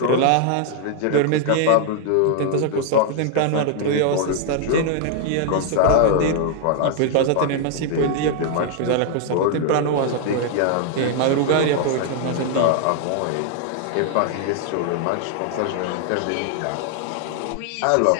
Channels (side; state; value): both; different; correlation 0.00